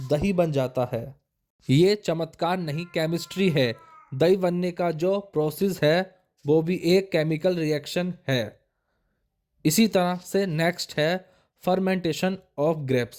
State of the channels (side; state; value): both; identical; correlation 1.00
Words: दही बन जाता है। ये चमत्कार नहीं, केमिस्ट्री है। दही बनने का जो प्रोसेस है वो भी एक केमिकल रिएक्शन है। इसी तरह से नेक्स्ट है फर्मेंटेशन ऑफ